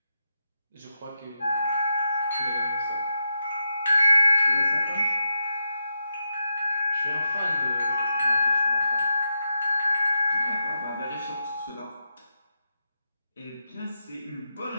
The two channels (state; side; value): inverted; both; correlation -0.86